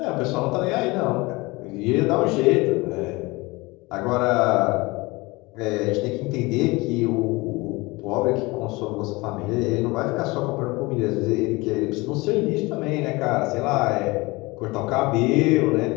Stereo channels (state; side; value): quieter; right; 23.5 dB